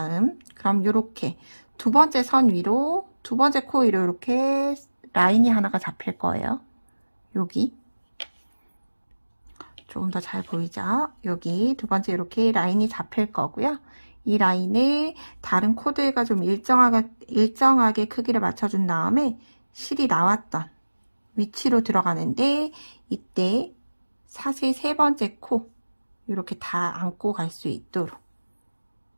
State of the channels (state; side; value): inverted; both; correlation -1.00